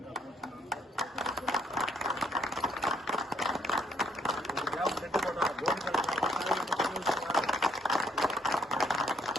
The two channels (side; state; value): both; normal; correlation 0.68